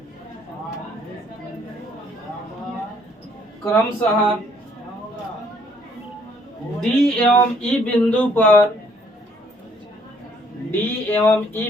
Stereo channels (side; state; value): both; normal; correlation 0.64